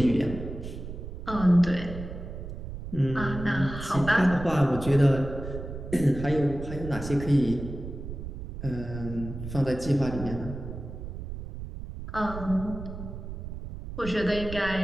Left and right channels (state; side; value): noise; right; rumble, 9 dB below the sound